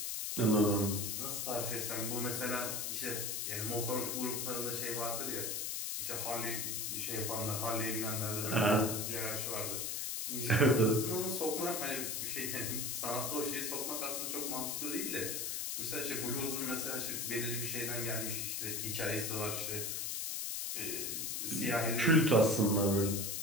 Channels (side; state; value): left; noise; hiss, 2 dB below the sound